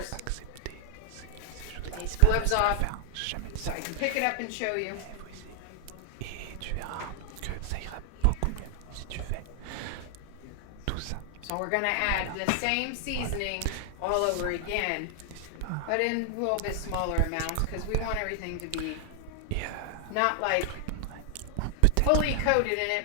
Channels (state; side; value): different; both; correlation 0.00